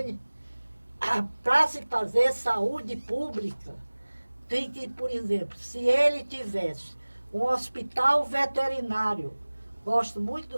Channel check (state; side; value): inverted; both; correlation -1.00